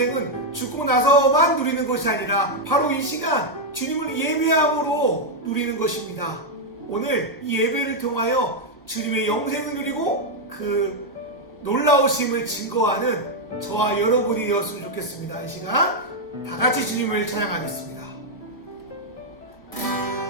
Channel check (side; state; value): both; normal; correlation 0.00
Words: 죽고 나서만 누리는 것이 아니라 바로 이 시간 주님을 예배함으로 누리는 것입니다. 오늘 이 예배를 통하여 주님의 영생을 누리고 그 놀라우심을 증거하는 저와 여러분이 되었으면 좋겠습니다. 이 시간 다 같이 주님을 찬양하겠습니다.